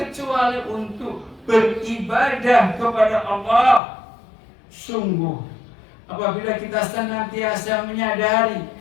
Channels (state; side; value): drops out; right; at 3.8 s